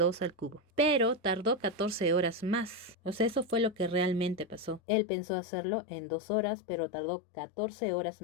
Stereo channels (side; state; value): right; drops out; at 4.8 s